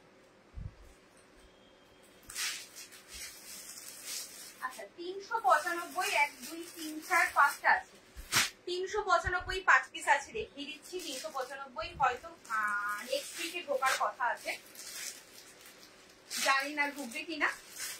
আচ্ছা, 395, 1, 2, 3, 4, 5টা আছে। 395 5 পিস আছে, দেখিয়ে দিচ্ছি। 395 হয়তো নেক্সট উইকে ঢোকার কথা আছে, জানি না ঢুকবে কিনা,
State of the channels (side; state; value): both; identical; correlation 1.00